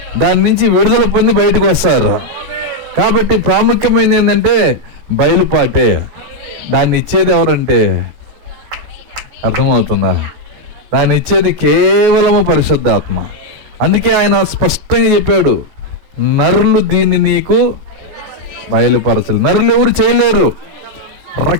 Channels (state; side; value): late; left; 14 ms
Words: దాని నుంచి విడుదల పొంది బయటకు వస్తారు. కాబట్టి ప్రాముఖ్యమైనది ఏంటంటే బయలుపాటే. దాన్ని ఇచ్చేది ఎవరంటే, అర్థమవుతుందా? దాన్ని ఇచ్చేది కేవలము పరిశుద్ధాత్మ. అందుకే ఆయన స్పష్టంగా చెప్పాడు, నరులు దీన్ని నీకు బయలుపరచలేదు. నరులు ఎవరు చేయలేరు,